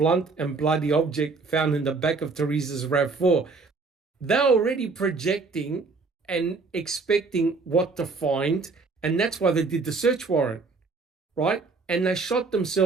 and bloody object found in the back of Teresa's RAV4. They're already projecting and expecting what to find, and that's why they did the search warrant, right? And they shot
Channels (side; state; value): left; quieter; 4.2 dB